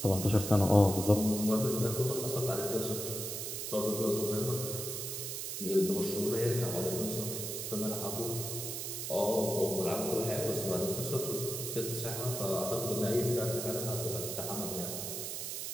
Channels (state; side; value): noise; right; hiss, 5 dB below the sound